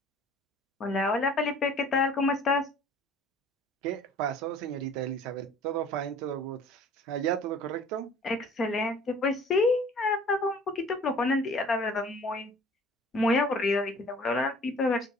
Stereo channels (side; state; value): both; normal; correlation 0.50